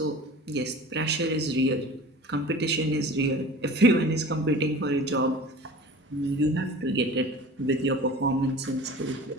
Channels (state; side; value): normal; both; correlation 0.39